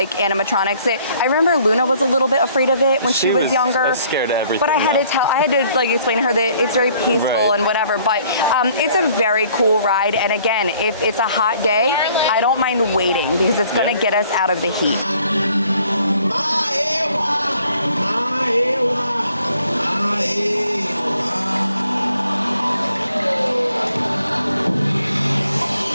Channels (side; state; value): both; inverted; correlation -0.61